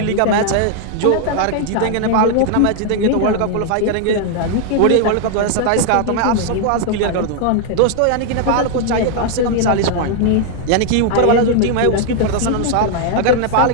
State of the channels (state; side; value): different; both; correlation 0.00